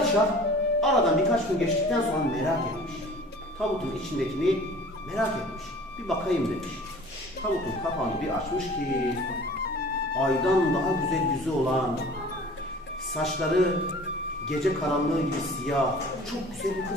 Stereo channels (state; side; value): normal; both; correlation 0.45